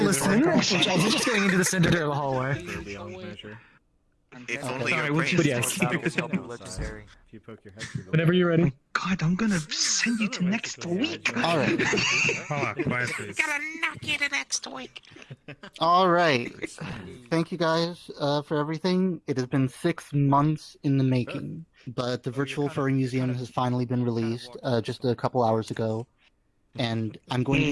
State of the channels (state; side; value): identical; both; correlation 1.00